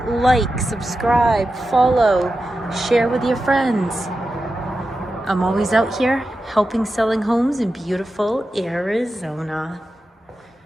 like, subscribe, follow, share with your friends. I'm always out here helping selling homes in beautiful Arizona.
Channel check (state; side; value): normal; both; correlation 0.91